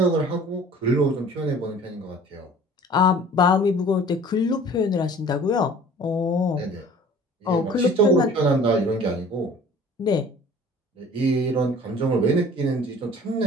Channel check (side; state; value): both; normal; correlation 0.48